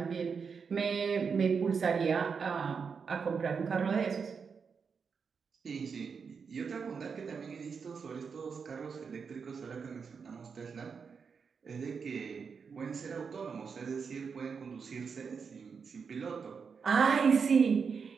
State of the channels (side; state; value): left; quieter; 5.8 dB